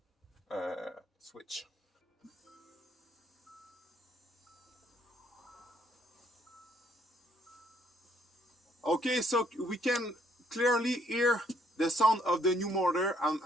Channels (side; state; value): both; normal; correlation 0.68